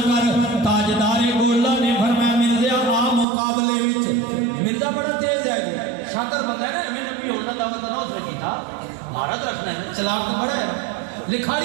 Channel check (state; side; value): drops out; left; at 3.2 s